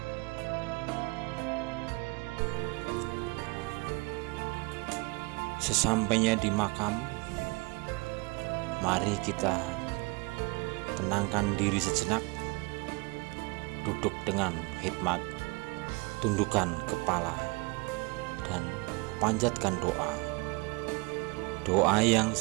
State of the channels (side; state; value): left; quieter; 27.1 dB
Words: Sesampainya di makam, mari kita tenangkan diri sejenak, duduk dengan hikmat, tundukkan kepala, dan panjatkan doa. Doa yang